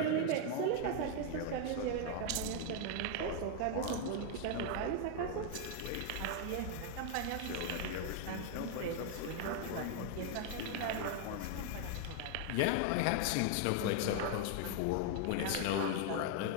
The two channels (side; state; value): both; different; correlation 0.00